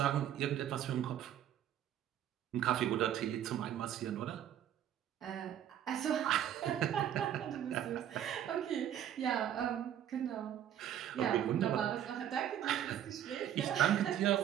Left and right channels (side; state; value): left; quieter; 10.6 dB